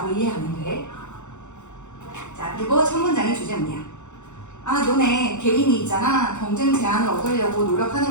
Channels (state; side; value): late; right; 0.84 ms